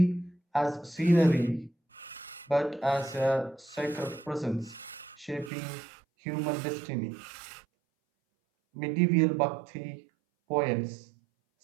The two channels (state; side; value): drops out; left; at 5.5 s